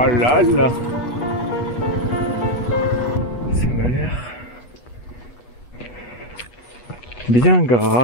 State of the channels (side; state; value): right; late; 8.2 ms